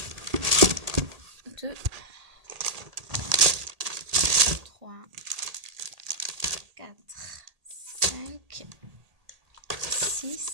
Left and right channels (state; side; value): late; left; 1.8 ms